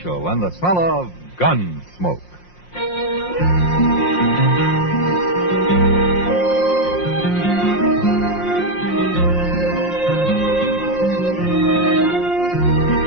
and the smell of Gunsmoke.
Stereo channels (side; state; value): right; late; 5.6 ms